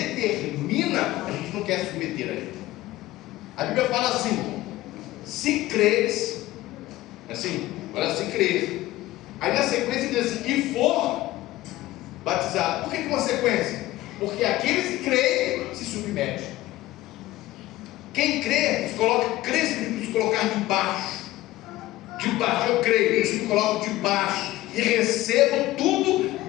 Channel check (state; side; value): quieter; right; 16.7 dB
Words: a gente não quer se submeter a ele. A Bíblia fala assim: se creres, assim, olha, se creres. Aí na sequência diz assim, e for batizado. Por que uma sequência? Porque aqueles que creem se submetem. Quem crê, crê significa se colocar debaixo. Debaixo, eu creio, eu me coloco debaixo e recebo tudo